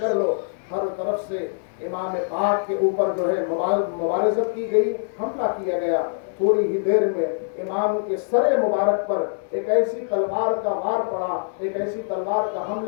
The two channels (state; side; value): silent; right; digital silence